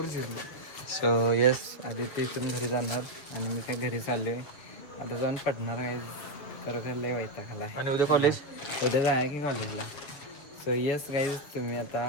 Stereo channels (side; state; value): right; late; 7.4 ms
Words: सो येस आधी ते इथून घरी जाणार आणि मी काय घरी चाललोय. आता जाऊन पडणार गाईज. खरं लय वैताग आलाय. आणि उद्या कॉलेज. उद्या जाय की कॉलेजला. सो येस गाईज तुम्ही आता